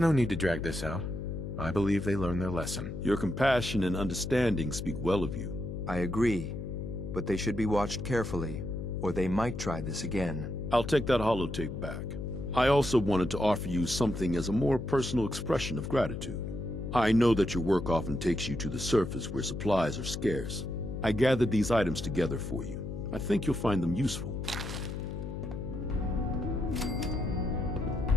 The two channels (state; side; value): noise; left; hum, 6 dB below the sound